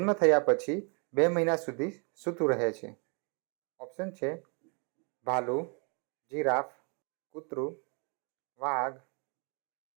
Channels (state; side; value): quieter; left; 36.3 dB